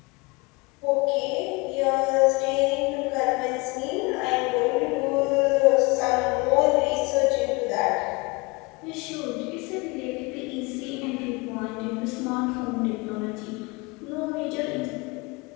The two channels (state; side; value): quieter; right; 26.3 dB